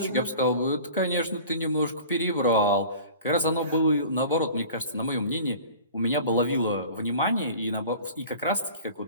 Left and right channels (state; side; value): inverted; both; correlation -0.42